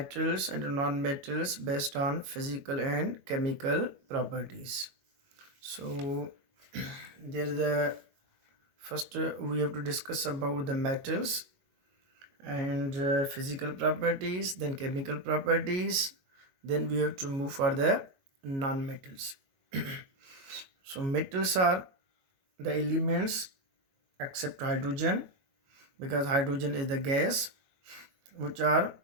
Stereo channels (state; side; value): late; left; 22 ms